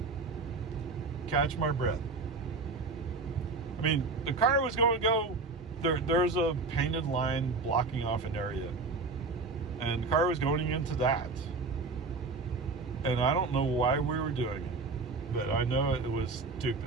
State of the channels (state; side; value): quieter; left; 3.9 dB